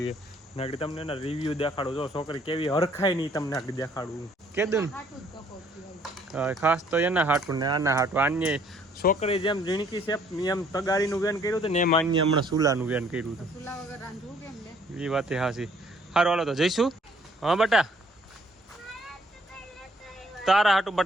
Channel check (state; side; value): normal; both; correlation 0.62